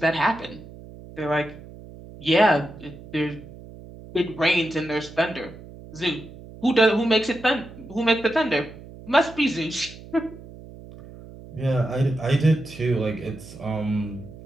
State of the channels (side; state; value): right; noise; hum, 17 dB below the sound